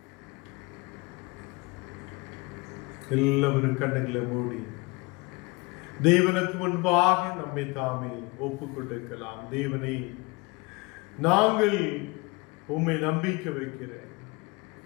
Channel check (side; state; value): right; quieter; 25.7 dB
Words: எல்லாவரும் கண்ணுகளை மூடி தேவனுக்கு முன்பாக நம்மை தாமே ஒப்புக் கொடுக்கலாம். தேவனை, நாங்கள் உம்மை நம்பிக்கை வைக்கிறேன்,